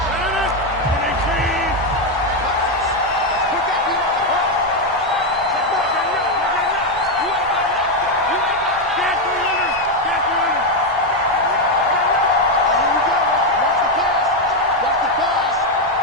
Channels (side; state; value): both; normal; correlation 0.05